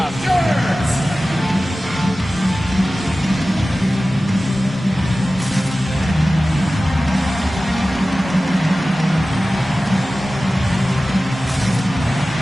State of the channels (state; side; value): normal; both; correlation 0.96